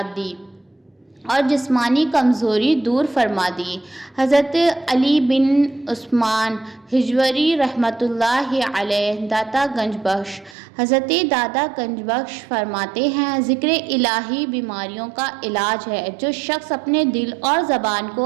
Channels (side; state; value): left; drops out; at 10.6 s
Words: دی اور جسمانی کمزوری دور فرما دی۔ حضرت علی بن عثمان ہجویری رحمۃ اللہ علیہ داتا گنج بخش۔ حضرت داتا گنج بخش فرماتے ہیں، ذکر الہی بیماریوں کا علاج ہے۔ جو شخص اپنے دل اور زبان